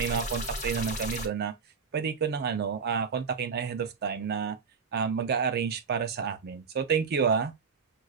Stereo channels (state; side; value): quieter; left; 5.6 dB